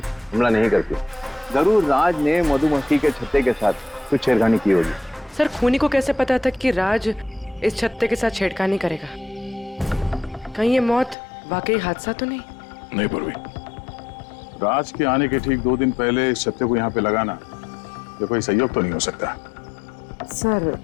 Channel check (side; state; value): right; drops out; at 11.2 s